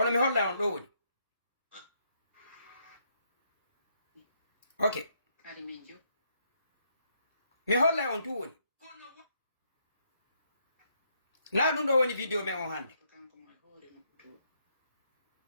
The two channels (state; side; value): inverted; both; correlation -0.74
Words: mi holla on ɗo woni ok mi holla on tu woni na ɗum ɗo woni vidéo men on hande